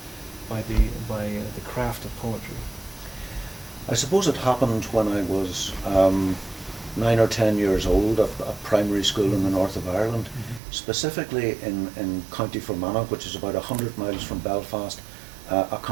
by the craft of poetry. I suppose it happened when I was 9 or 10 years old at primary school in the north of Ireland, specifically in County Fermanagh, which is about 100 miles from Belfast, a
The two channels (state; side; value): drops out; left; at 10.6 s